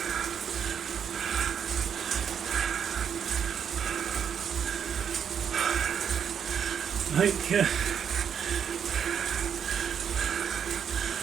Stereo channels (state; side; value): quieter; left; 7.9 dB